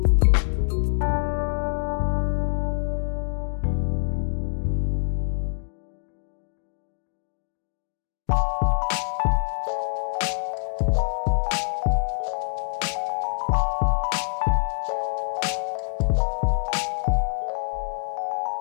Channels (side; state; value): right; silent; digital silence